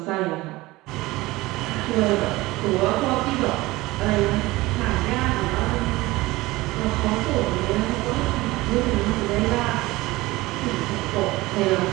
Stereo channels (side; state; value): left; quieter; 19.8 dB